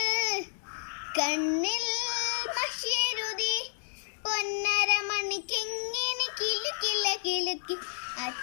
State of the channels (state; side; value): silent; right; digital silence